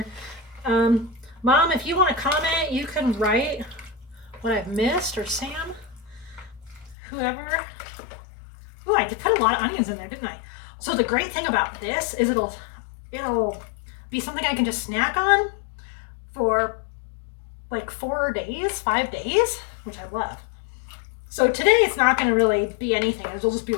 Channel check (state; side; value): drops out; right; at 7.0 s